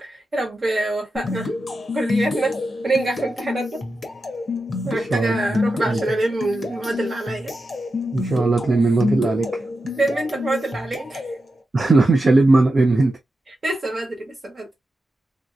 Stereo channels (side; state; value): both; normal; correlation 0.90